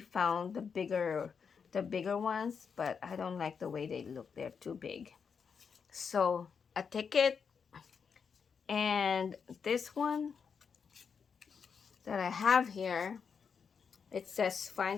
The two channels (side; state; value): right; quieter; 6.2 dB